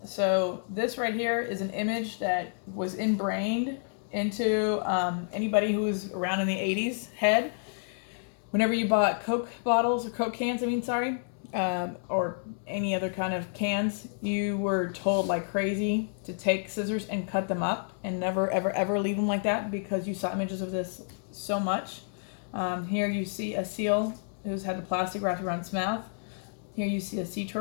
So this right here is an image that was ingrained into anybody who was around in the 80s head. Whenever you bought Coke bottles, or Coke cans, or any other kind of cans, you were told like crazy to take scissors and cut them up and never, ever, ever leave them like that because you saw images of this so much. Here you see a seal who's had the plastic wrapped around its mouth. Here you see a sea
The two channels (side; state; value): right; silent; digital silence